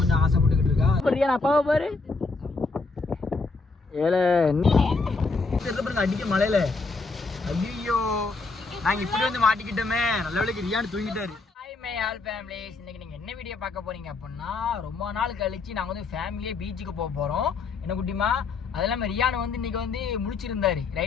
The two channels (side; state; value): right; quieter; 3.9 dB